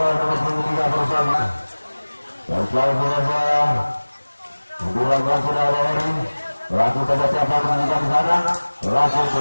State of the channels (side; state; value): both; inverted; correlation -1.00